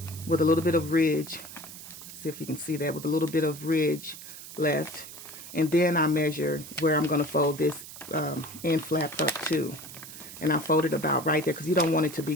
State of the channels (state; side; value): noise; right; hiss, 14 dB below the sound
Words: with a little bit of ridge. See if you can see that, with a little bit of ridge left. And then I measure where I'm going to fold this end flap up to. And I fold it about right there because you don't want it to be